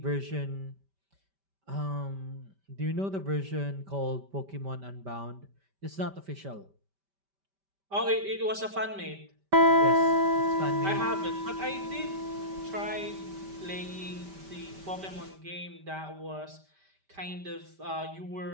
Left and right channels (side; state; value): left; late; 5.1 ms